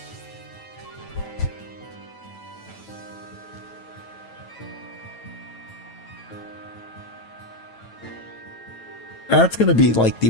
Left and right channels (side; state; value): right; late; 9.1 ms